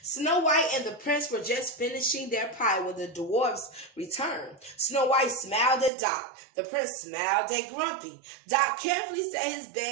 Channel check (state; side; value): drops out; left; at 5.9 s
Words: Snow White and the prince were just finishing their pie when the dwarfs returned. Snow White smiled at Doc. The prince smiled at Grumpy. Doc carefully set his